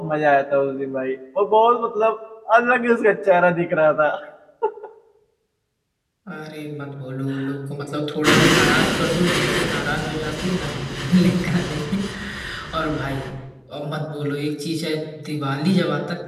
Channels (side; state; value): both; identical; correlation 1.00